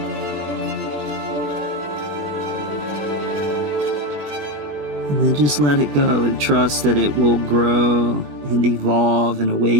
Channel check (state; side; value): late; left; 20 ms